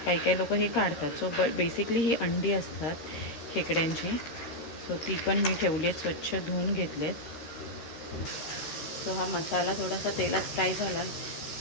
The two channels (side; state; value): right; late; 13 ms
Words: काही काही लोक हे काढतात. सो बेसिकली ही अंडी असतात खेकड्यांची. सो ती पण मी ठेवली आहेत, स्वच्छ धुवून घेतलेत. सो हा मसाला थोडासा तेलात फ्राय झाला